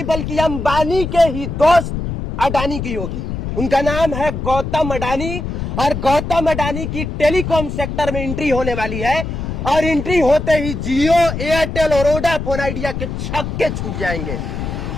बल्कि अंबानी के ही दोस्त अडानी की होगी। उनका नाम है गौतम अडानी और गौतम अडानी की टेलीकॉम सेक्टर में एंट्री होने वाली है। और एंट्री होते ही जियो, एयरटेल और वोडाफोन आइडिया के छक्के छूट जाएंगे।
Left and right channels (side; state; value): left; noise; rumble, 5 dB below the sound